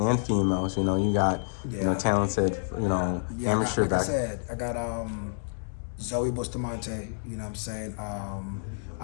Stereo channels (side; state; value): right; silent; digital silence